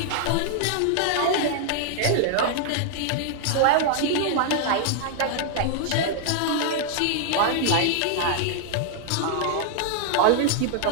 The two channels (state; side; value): different; both; correlation 0.00